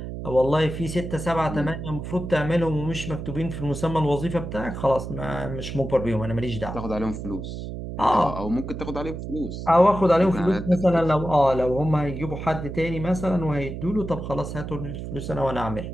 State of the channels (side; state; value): right; noise; hum, 7 dB below the sound